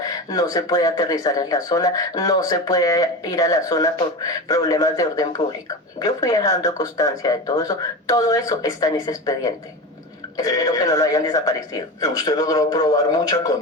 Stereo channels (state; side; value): normal; both; correlation 0.25